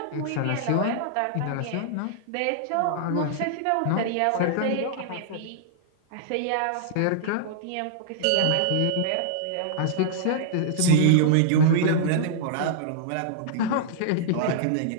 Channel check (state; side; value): different; both; correlation -0.02